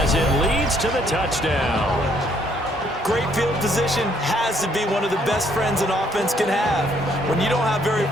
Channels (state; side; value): normal; both; correlation 0.67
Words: it leads to the touchdown. Great field position has to be one of the best friends an offense can have. When you don't have very